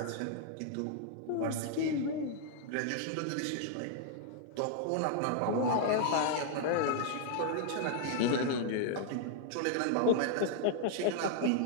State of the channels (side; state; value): both; different; correlation 0.00